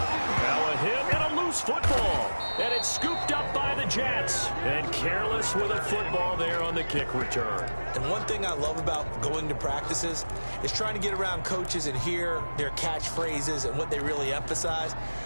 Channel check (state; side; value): inverted; both; correlation -1.00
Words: a hit and a loose football. And it's scooped up by the Jets. And careless with a football there on the kick return. And one thing I love about going to practices is trying to get around coaches and hear their catchphrases and what they really emphasize.